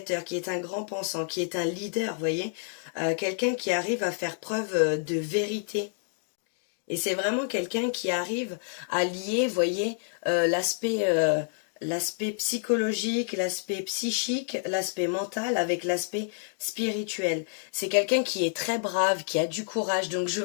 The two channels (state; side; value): silent; right; digital silence